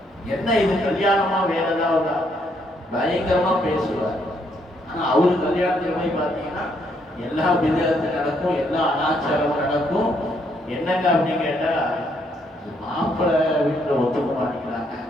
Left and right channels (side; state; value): both; normal; correlation 0.72